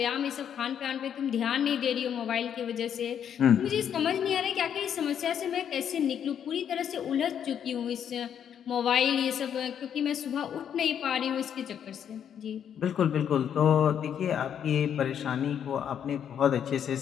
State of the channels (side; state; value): right; quieter; 8.8 dB